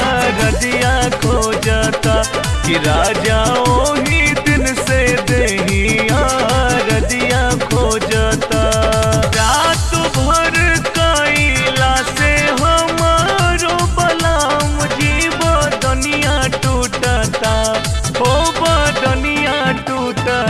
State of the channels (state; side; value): identical; both; correlation 1.00